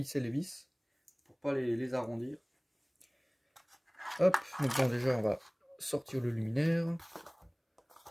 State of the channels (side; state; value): both; identical; correlation 1.00